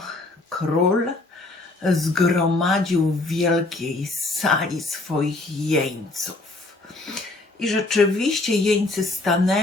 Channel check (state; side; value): quieter; right; 3.0 dB